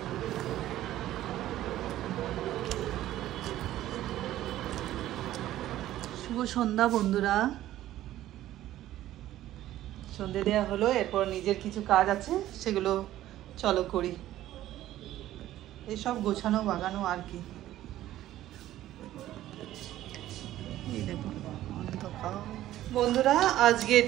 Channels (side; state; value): left; quieter; 13.9 dB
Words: শুভ সন্ধ্যা বন্ধুরা, সন্ধ্যে দেওয়া হলো, এরপর নিজের কিছু কাজ আছে সেগুলো চলো করি। এইসব গোছানো বাগানো আর কি। বন্ধুরা আজকে